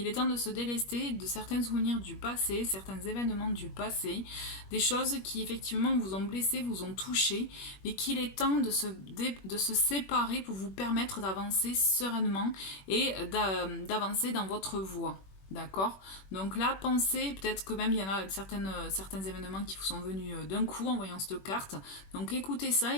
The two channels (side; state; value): right; late; 21 ms